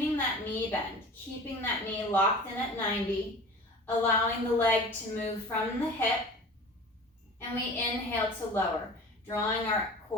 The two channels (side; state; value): both; normal; correlation 0.39